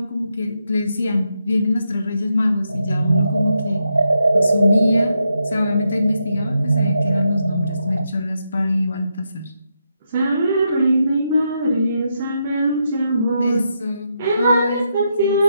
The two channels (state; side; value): inverted; both; correlation -0.82